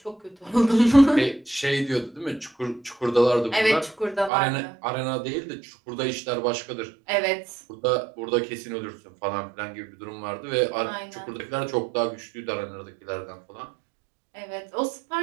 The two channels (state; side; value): drops out; left; at 4.3 s